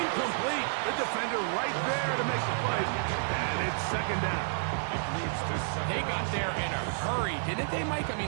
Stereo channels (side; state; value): left; silent; digital silence